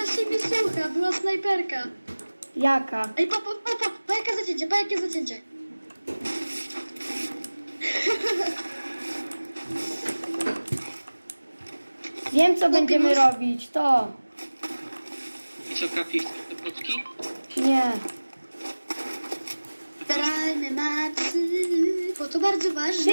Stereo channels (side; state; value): both; inverted; correlation -1.00